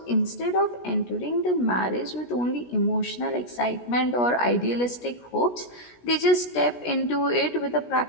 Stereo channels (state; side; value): late; right; 17 ms